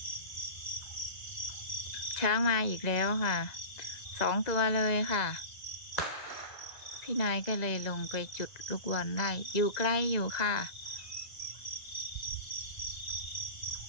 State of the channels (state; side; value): late; right; 1.9 ms